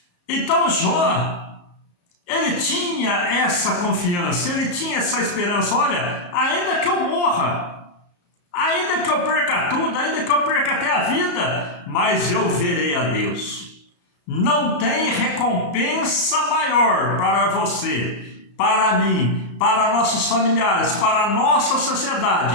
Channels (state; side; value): late; right; 34 ms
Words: Então Jó, ele tinha essa confiança, ele tinha essa esperança. Olha, ainda que eu morra, ainda que eu perca tudo, ainda que eu perca até a vida, mas eu verei a Deus. Não tem recompensa maior para você, para mim, para nossos familiares, para a nossa